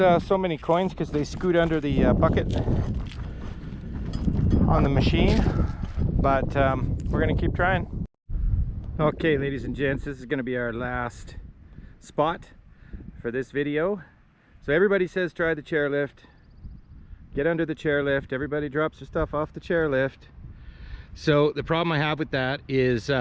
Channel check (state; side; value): identical; both; correlation 1.00